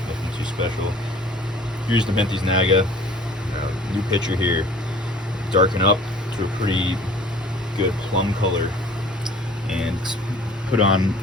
too special. Here's the Nepenthes naga. New picture here. Darken up to a pretty good plum color and put on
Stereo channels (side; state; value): both; normal; correlation 0.49